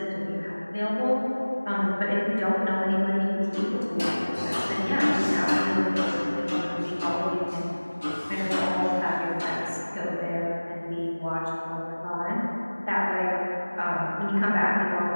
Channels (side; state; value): both; inverted; correlation -1.00